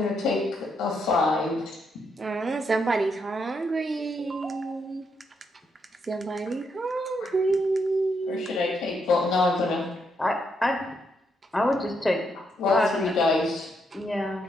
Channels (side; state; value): both; normal; correlation 0.78